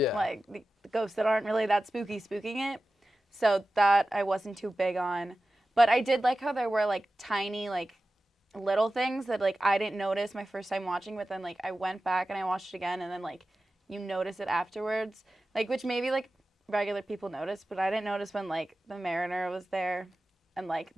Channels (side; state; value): both; normal; correlation 0.94